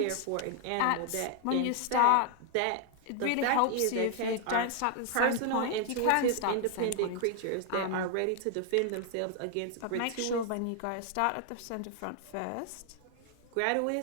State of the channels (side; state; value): both; different; correlation 0.00